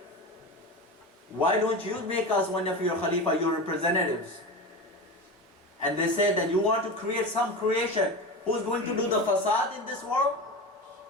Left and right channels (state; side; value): normal; both; correlation 0.25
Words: Why don't you make us one of your Khalifa, your representatives? And they said that you want to create some creation who's going to do the facade in this world?